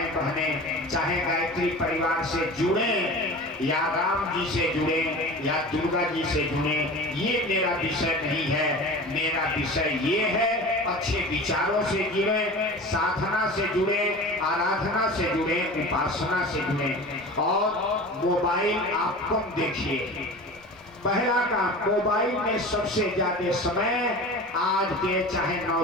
बहनें चाहे गायत्री परिवार से जुड़े या राम जी से जुड़े या दुर्गा जी से जुड़े, ये मेरा विषय नहीं है। मेरा विषय ये है अच्छे विचारों से जुड़े, साधना से जुड़े, आराधना से जुड़े, उपासना से जुड़े और मोबाइल आप कम देखिए। पहला काम, मोबाइल में सबसे ज्यादा समय आज के चाहे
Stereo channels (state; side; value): normal; both; correlation 0.35